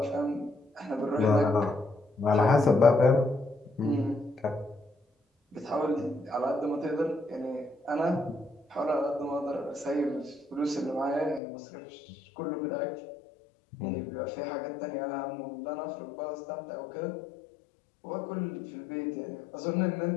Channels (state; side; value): drops out; right; at 11.4 s